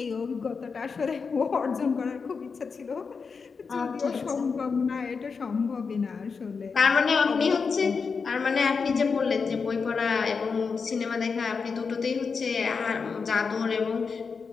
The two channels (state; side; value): quieter; right; 5.2 dB